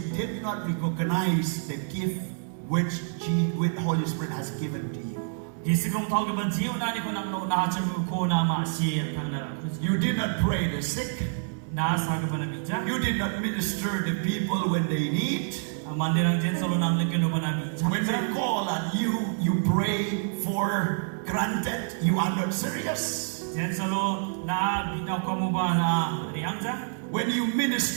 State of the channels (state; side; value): silent; left; digital silence